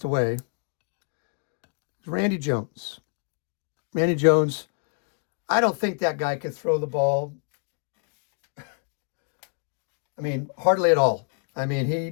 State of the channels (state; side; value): quieter; right; 39.7 dB